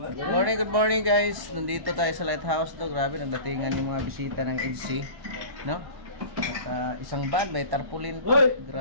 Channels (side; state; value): left; late; 1.1 ms